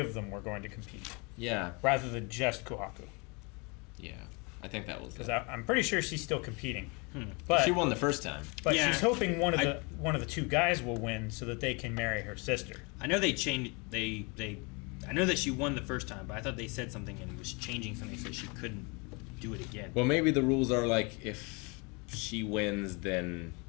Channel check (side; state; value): right; quieter; 30.1 dB